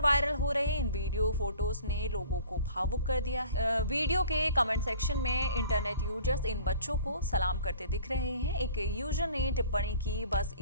हो रहे इन वीडियो फोटोज ने लोगों को भावुक कर दिया है। वीडियो के कमेंट सेक्शन में इंटरनेट यूजर्स इन बच्चों को सलाम करते दिख रहे हैं। एक यूजर ने टिप्पणी की, बस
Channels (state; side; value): inverted; both; correlation -0.47